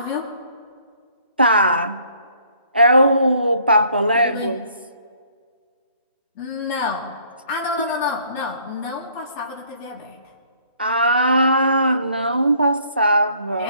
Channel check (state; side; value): inverted; both; correlation -0.61